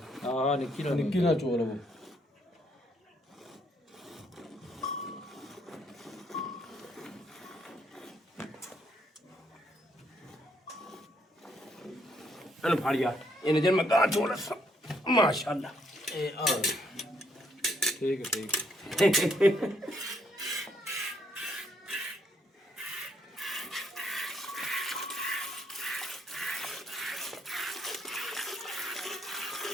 ਹਾਂ ਨਿੱਕੀ ਨਾਲ ਨਿੱਕੀ ਨਾ ਚੋ ਲਵੋ ਇਹਨੂੰ ਫੜ ਯਾਰ ਇਹਨੇ ਜੇ ਮੈਂ ਗਾਂ ਚੋਲ ਮਾਸ਼ਾਅੱਲਾ ਇਹ ਆ ਠੀਕ ਹੈ ਠੀਕ ਹੈ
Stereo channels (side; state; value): both; normal; correlation 0.71